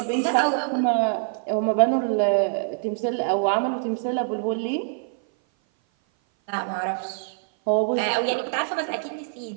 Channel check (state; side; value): silent; left; 57 dB below the other